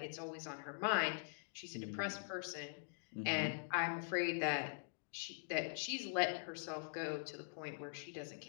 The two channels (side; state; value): right; silent; digital silence